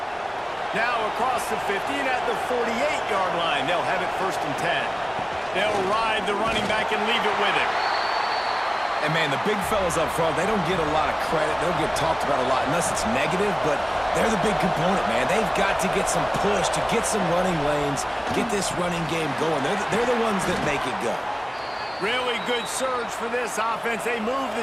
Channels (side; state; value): both; identical; correlation 1.00